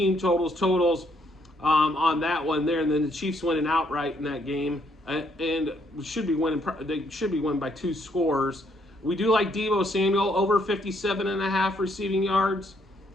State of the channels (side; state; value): both; normal; correlation 0.71